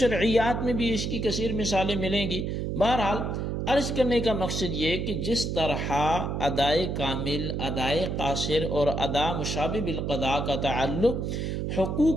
میں بھی اس کی کثیر مثالیں ملیں گی۔ بہرحال عرض کرنے کا مقصد یہ کہ جس طرح ادائے کامل، ادائے قاصر اور ادا مشابہ بالقضاء کا تعلق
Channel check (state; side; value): noise; right; hum, 2 dB below the sound